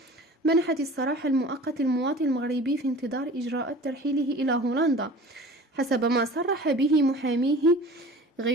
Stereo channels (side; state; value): both; normal; correlation 0.41